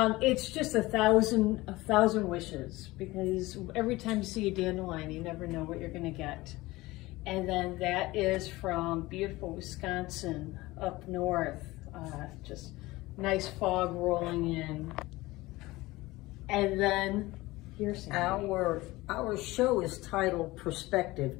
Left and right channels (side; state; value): right; quieter; 19.8 dB